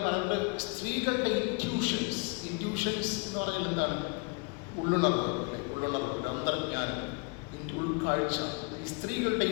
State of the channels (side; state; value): right; quieter; 30.9 dB